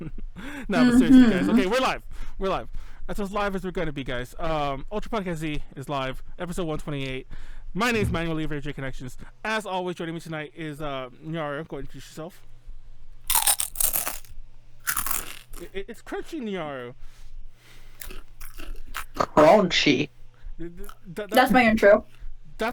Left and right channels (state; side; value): identical; both; correlation 1.00